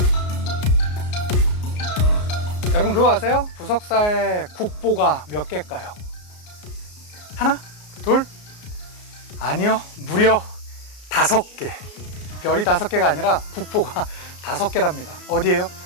여러분 그거 아세요? 부석사에 국보가 몇 개일까요? 하나? 둘? 아니요, 무려 5개. 별이 5개가 아니라 국보가 5개랍니다. 어디예요?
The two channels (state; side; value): late; right; 33 ms